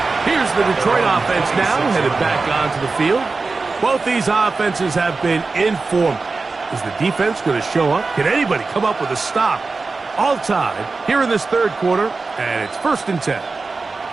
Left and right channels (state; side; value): quieter; left; 4.0 dB